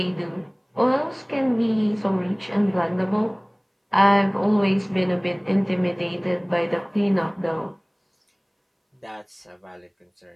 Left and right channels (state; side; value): identical; both; correlation 1.00